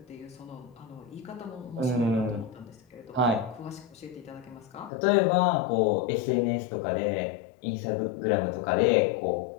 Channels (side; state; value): right; drops out; at 4.9 s